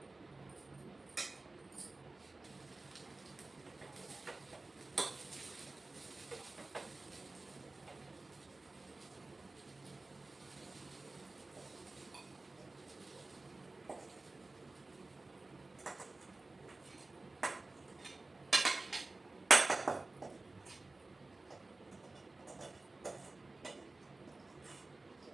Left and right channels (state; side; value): quieter; left; 3.2 dB